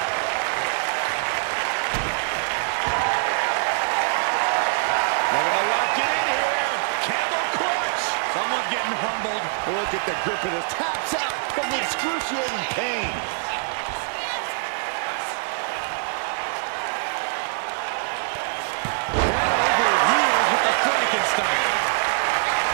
Looking to lock it in here. Camel clutch. Someone's getting humbled. Look at the grip of this. Taps out from the excruciating pain. Over heels with the Frankenstein.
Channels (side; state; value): left; silent; 60 dB below the other